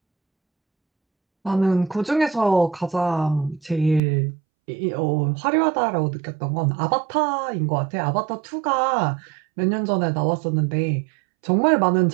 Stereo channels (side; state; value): left; drops out; at 4.0 s